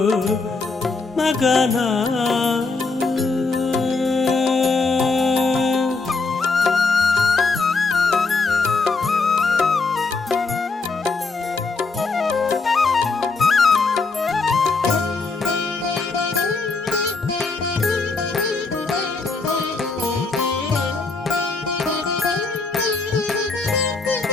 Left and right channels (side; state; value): right; quieter; 4.0 dB